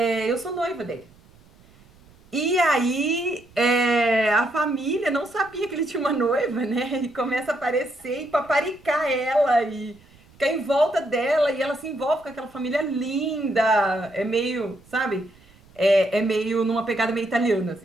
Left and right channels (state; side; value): noise; right; rumble, 28 dB below the sound